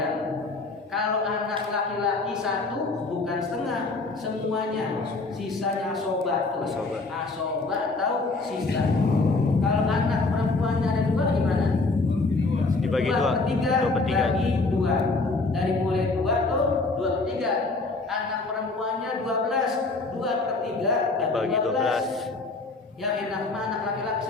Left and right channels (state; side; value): quieter; right; 3.5 dB